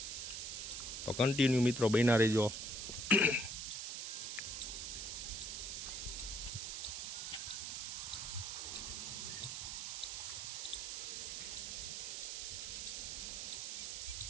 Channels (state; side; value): noise; right; hiss, 4 dB below the sound